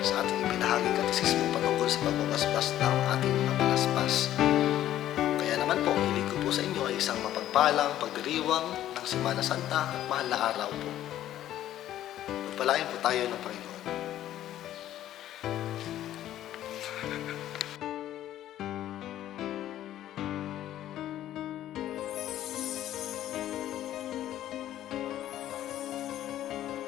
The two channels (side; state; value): right; quieter; 12.6 dB